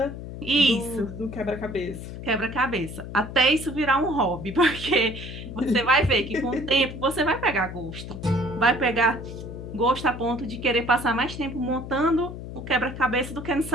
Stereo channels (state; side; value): noise; left; hum, 10 dB below the sound